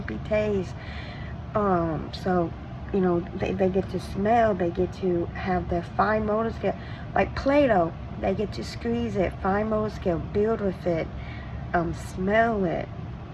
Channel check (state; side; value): identical; both; correlation 1.00